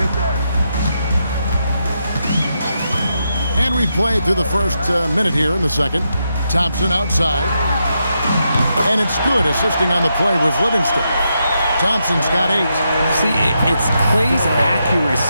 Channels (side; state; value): both; inverted; correlation -0.83